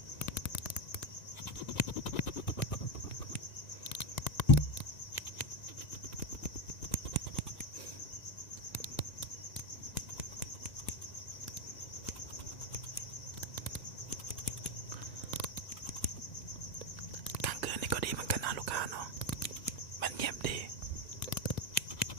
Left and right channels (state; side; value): late; right; 1.9 ms